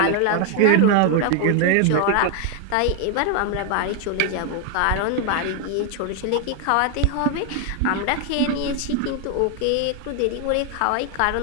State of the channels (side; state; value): both; different; correlation 0.00